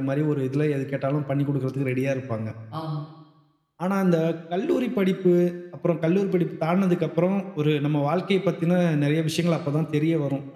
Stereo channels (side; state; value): both; identical; correlation 1.00